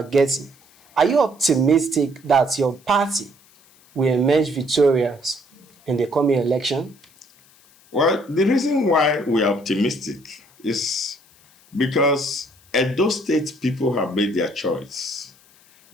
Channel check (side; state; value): left; noise; hiss, 29 dB below the sound